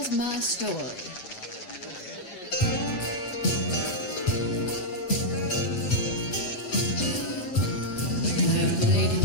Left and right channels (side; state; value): right; late; 8.1 ms